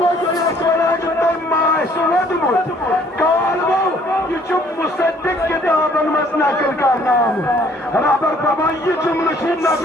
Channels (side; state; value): both; normal; correlation 0.60